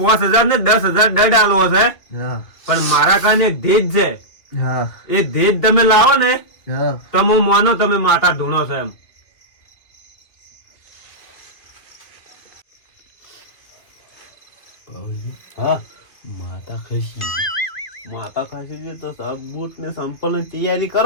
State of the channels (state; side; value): late; right; 2.4 ms